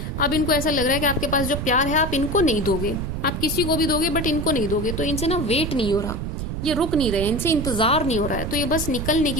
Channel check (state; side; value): noise; right; rumble, 4 dB below the sound